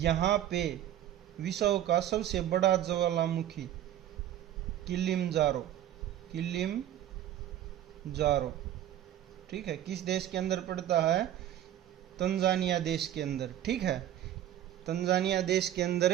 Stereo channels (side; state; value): left; quieter; 11.9 dB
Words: पे विश्व का सबसे बड़ा ज्वालामुखी किलिमंजारो। किलिमंजारो। ठीक है, किस देश के अंदर पड़ता है? तंजानिया देश के अंदर। ठीक है, तंजानिया देश के